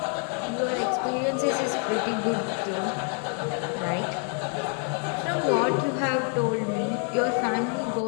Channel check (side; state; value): right; quieter; 36.3 dB